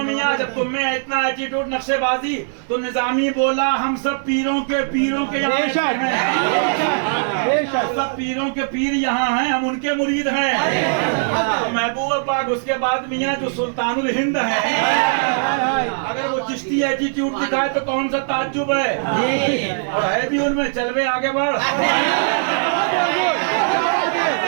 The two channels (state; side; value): silent; left; digital silence